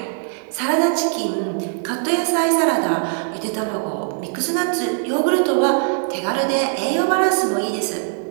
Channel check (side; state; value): left; silent; 61 dB below the other